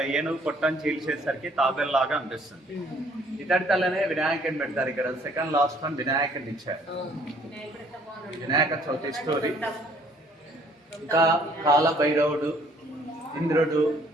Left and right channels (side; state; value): both; normal; correlation 0.60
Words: ఏనుగు పొట్టను చీల్చేసరికి తాబెల్లాగా అనిపిస్తుంది. ఇతడి తల్లనే వినాయకుని పెడతారు. ఇక్కడ సెకండ్ లాస్ట్ వన్ వినాయకుని ఇచ్చారు. వినాయక చవితి స్టోరీ. ఇంకా కాలభైరవుడు, ఇంద్రుడు,